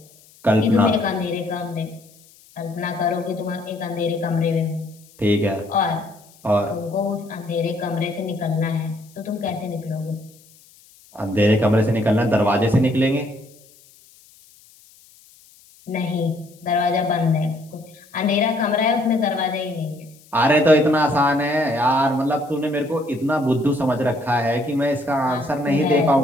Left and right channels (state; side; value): noise; left; hiss, 27 dB below the sound